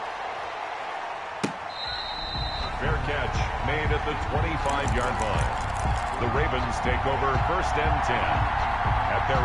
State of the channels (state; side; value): identical; both; correlation 1.00